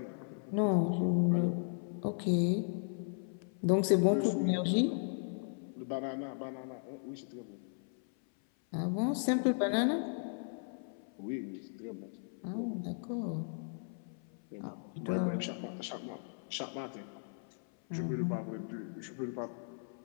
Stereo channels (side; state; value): right; silent; 54 dB below the other